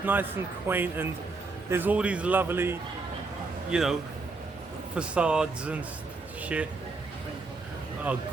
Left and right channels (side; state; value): left; quieter; 3.8 dB